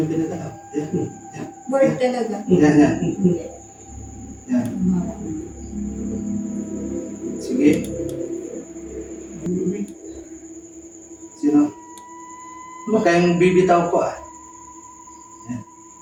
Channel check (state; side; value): identical; both; correlation 1.00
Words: pinagalaw. Yan. Board talaga. Yan, yan. Yan. Sige. Sino? Huwag kayong bibitaw po ah. Yan.